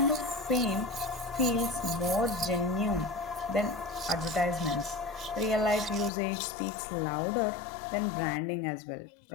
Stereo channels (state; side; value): drops out; right; at 6.1 s